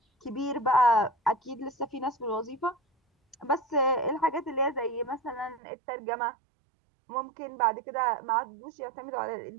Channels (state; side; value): drops out; left; at 5.6 s